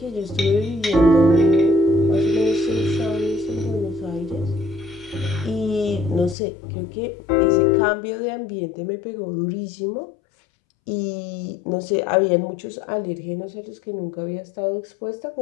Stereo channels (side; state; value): right; drops out; at 6.4 s